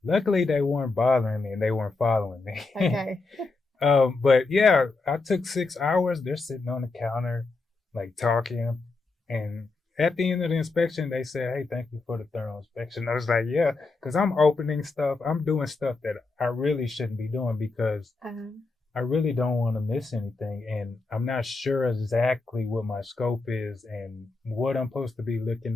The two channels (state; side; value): quieter; right; 3.7 dB